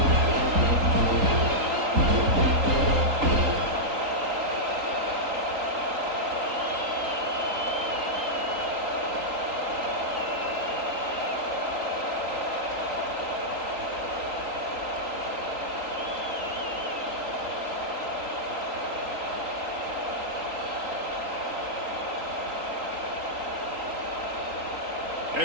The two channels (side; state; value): left; late; 3.8 ms